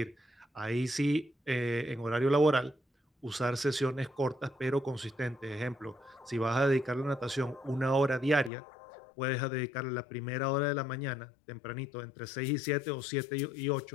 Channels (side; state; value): right; drops out; at 8.5 s